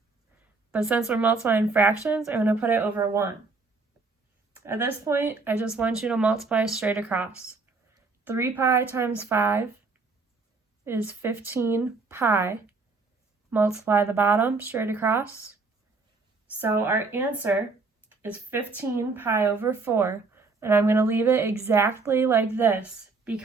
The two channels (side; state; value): left; quieter; 4.1 dB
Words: but since we're multiplying fractions, I'm going to put it over 1. At this point, I just want you to multiply straight across. 3 pi times 5 is 15 pi. Multiply the bottom straight across. So our answer is 15 pi over 4, and I'm going to leave it exactly like this